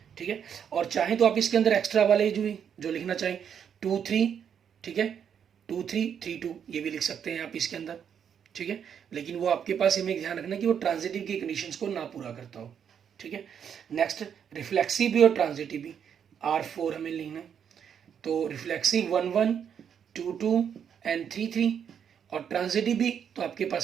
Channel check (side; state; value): left; quieter; 8.0 dB